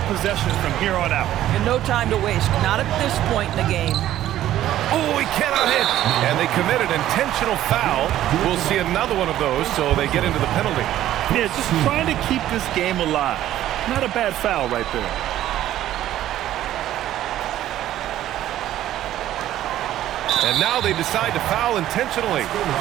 possessions from here on out. And no time to waste. Not at this point in the game. Oh, he cannot hit. And they committed intentional foul. We'll see another one of those, so they get into the penalty. Yeah, just trying to keep this game alive. Not a bad foul right there. And now they decide to foul intentionally.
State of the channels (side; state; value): left; quieter; 13.0 dB